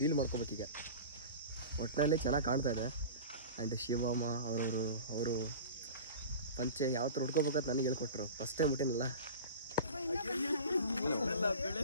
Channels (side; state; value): both; inverted; correlation -0.35